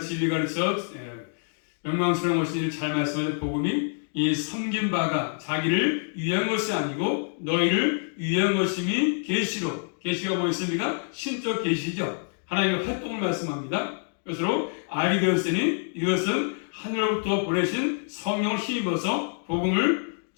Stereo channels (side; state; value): right; silent; 60 dB below the other